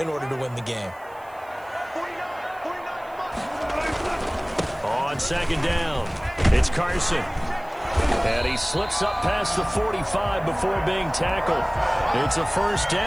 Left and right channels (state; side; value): noise; right; hiss, 28 dB below the sound